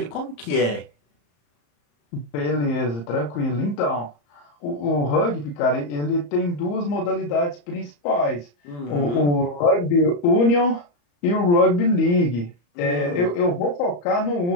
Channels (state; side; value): late; right; 34 ms